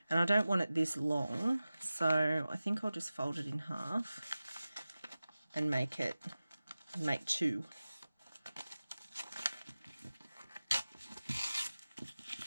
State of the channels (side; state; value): both; inverted; correlation -0.96